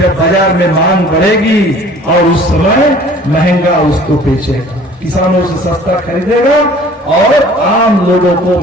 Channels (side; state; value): both; normal; correlation 0.50